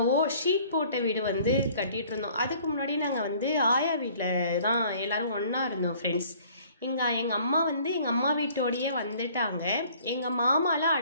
ஷீட் போட்ட வீடு கட்டிகிட்டு இருந்தோம். அதுக்கு முன்னாடி நாங்கள் ஆயா வீட்டில் தான் எல்லோரும் ஒன்றா இருந்தோம் ஃப்ரெண்ட்ஸ். எங்கள் அம்மா எங்கள் அம்மா வீட்டோடையே வந்துட்டாங்க. எங்கள் மாமாலாம்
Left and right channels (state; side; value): inverted; both; correlation -0.55